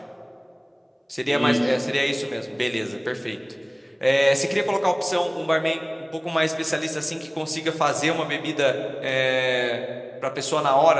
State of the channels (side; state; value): both; identical; correlation 1.00